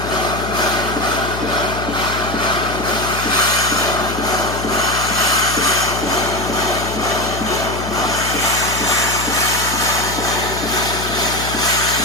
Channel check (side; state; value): left; noise; hum, 7 dB below the sound